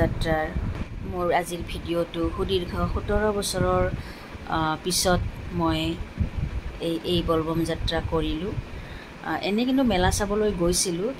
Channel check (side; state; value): both; identical; correlation 1.00